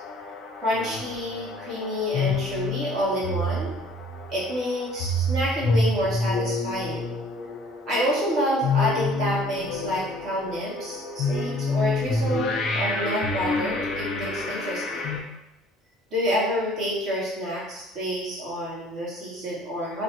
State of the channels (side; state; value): both; normal; correlation 0.54